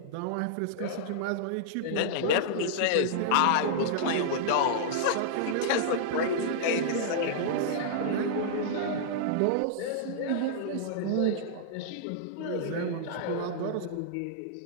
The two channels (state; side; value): different; both; correlation -0.02